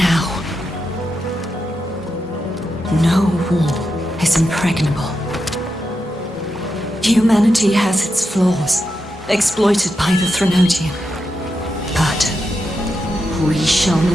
No wall is impregnable. Humanity has its flaws, exploited by the Threnodian. But we shall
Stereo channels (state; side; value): normal; both; correlation 0.86